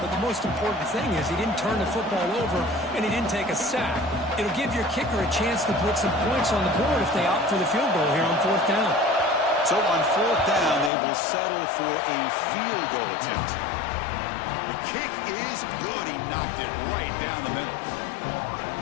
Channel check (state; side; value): drops out; right; at 10.9 s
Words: but the most important thing is he didn't turn the football over and he didn't take a sack. It'll give your kicker a chance to put some points on the board if they opt for the field goal here on 4th down. So on 4th down, they will settle for a field goal attempt. The kick is good. He knocked it right down the middle.